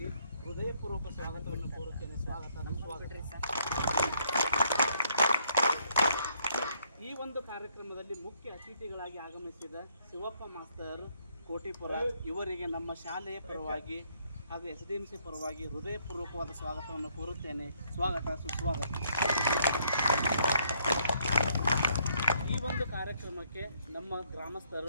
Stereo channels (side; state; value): both; inverted; correlation -0.69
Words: ಹೃದಯಪೂರ್ವಕ ಸ್ವಾಗತವನ್ನು ಕೋರುತ್ತೇನೆ. ಈ ಒಂದು ಕಾರ್ಯಕ್ರಮದಲ್ಲಿ ಮುಖ್ಯ ಅತಿಥಿಗಳಾಗಿ ಆಗಮಿಸಿದ ಶಿವಪ್ಪ ಮಾಸ್ತರ್ ಕೋಟಿಪುರ ಇವರಿಗೆ ನಮ್ಮ ಶಾಲೆಯ ಪರವಾಗಿ ಹಾಗೂ SDMC ಪರವಾಗಿ ಹೃದಯಪೂರ್ವಕವಾದ ಸ್ವಾಗತವನ್ನು ಕೋರುತ್ತೇನೆ. ಸ್ವಾಗತ, ಸುಸ್ವಾಗತ. ಈ ಒಂದು ಕಾರ್ಯಕ್ರಮಕ್ಕೆ ನಮ್ಮ